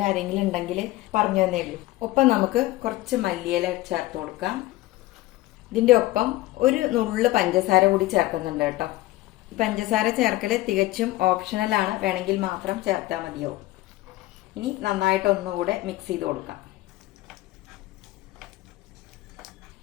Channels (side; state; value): right; quieter; 17.5 dB